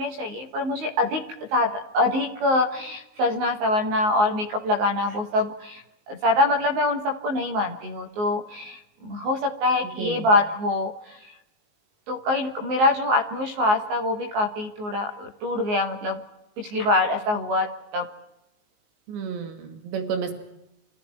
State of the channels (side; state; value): left; late; 19 ms